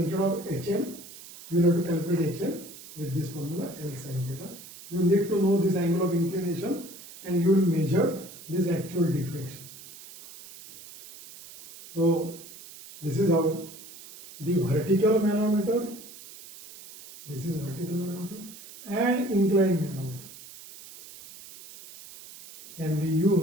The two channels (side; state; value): right; noise; hiss, 17 dB below the sound